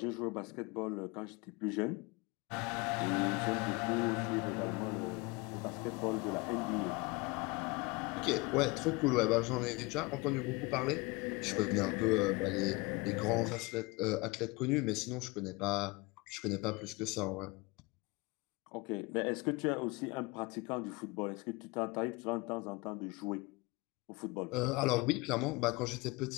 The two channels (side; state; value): right; quieter; 25.0 dB